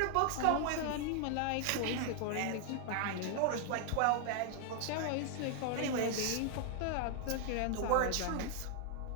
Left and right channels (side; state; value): both; different; correlation 0.00